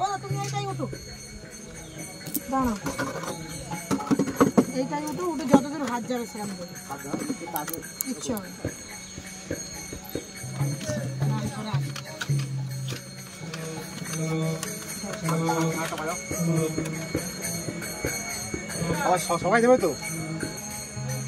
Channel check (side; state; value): both; identical; correlation 1.00